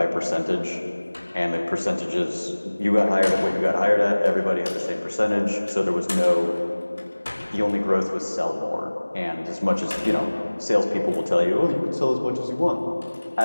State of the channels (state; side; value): inverted; both; correlation -1.00